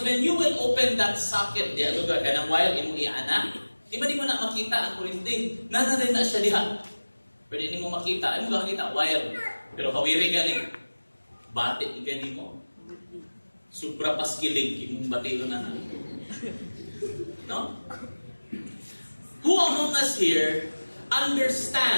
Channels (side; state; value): both; inverted; correlation -1.00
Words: when you will open that socket, diya lugar ka ng wire, imo iana, di mo na makita ang kurente. Nanarin na siya diha. Pero hindi mo makita. Ano ba makita? Wire. Pero kawiri galing. Batik galing mo. Supra paskilig, imong batilo na na. No? Who among us here